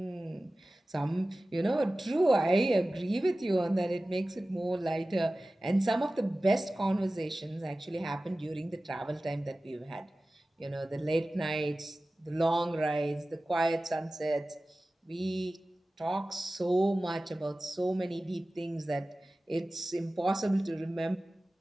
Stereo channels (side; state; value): both; normal; correlation 0.97